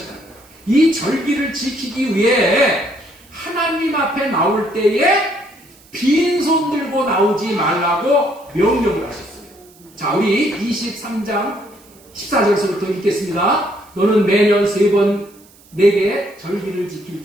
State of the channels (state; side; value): noise; right; hiss, 27 dB below the sound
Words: 이 절기를 지키기 위해 하나님 앞에 나올 때에 빈손 들고 나오지 말라고 명령을 하셨어요. 자, 우리 23장 14절부터 읽겠습니다. 너는 매년 3번 내게 절기를